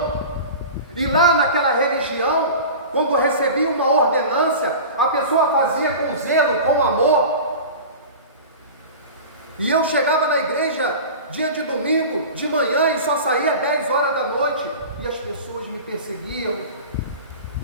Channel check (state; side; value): inverted; both; correlation -0.35